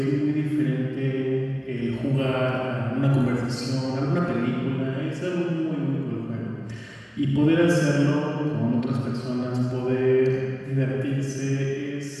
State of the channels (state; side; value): identical; both; correlation 1.00